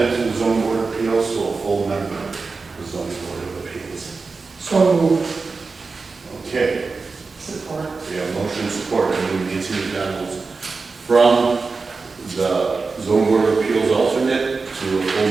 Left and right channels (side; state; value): left; quieter; 4.3 dB